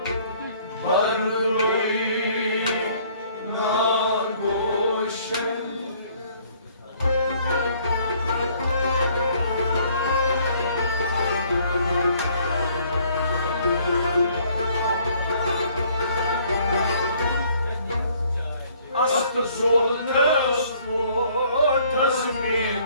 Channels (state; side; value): inverted; both; correlation -0.61